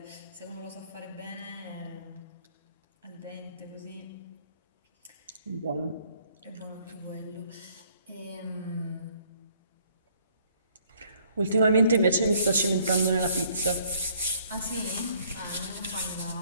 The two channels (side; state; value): both; inverted; correlation -0.63